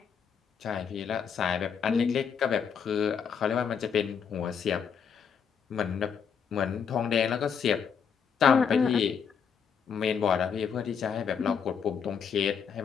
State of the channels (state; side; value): quieter; right; 6.9 dB